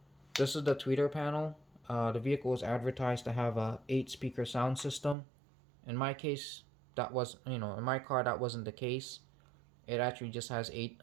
this is the tweeter panel. The vehicle was advertised to have a 8-speaker sound system. In my case, that was, in my car that wasn't the case. It actually just has it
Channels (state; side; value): drops out; left; at 5.2 s